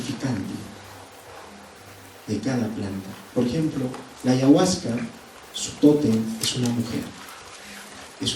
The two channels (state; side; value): identical; both; correlation 1.00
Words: de cada planta. Por ejemplo, la ayahuasca, su tótem es una mujer,